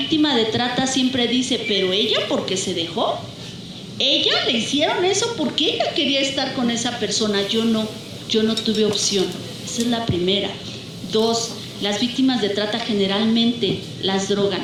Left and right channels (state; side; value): identical; both; correlation 1.00